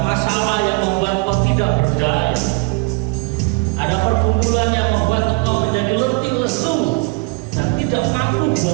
masalah yang membuat kau tidak berdaya, ada pergumulan yang membuat kau menjadi letih lesu dan tidak mampu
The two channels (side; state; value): left; quieter; 28.7 dB